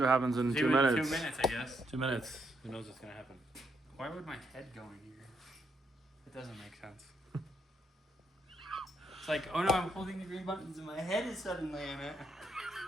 what happens in 2 2 minutes. 2 minutes, I guess. 2 minutes. Who knows what's gonna happen? Why would my head go in here? It doesn't make sense. It's like, oh no, I'm holding the green buttons and my head is suddenly in it.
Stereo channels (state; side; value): normal; both; correlation 0.77